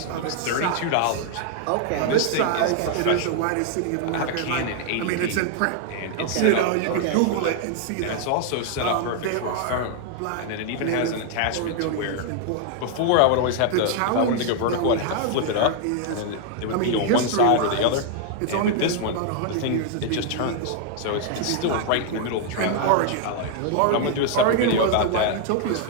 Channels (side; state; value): both; different; correlation 0.00